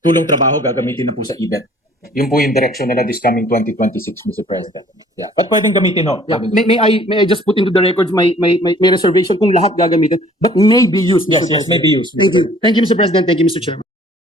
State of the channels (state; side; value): normal; both; correlation 0.55